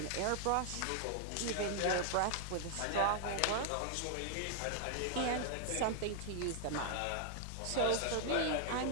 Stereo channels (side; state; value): both; different; correlation 0.00